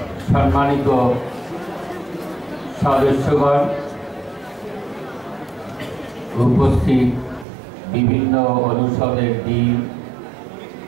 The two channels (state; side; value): drops out; left; at 7.5 s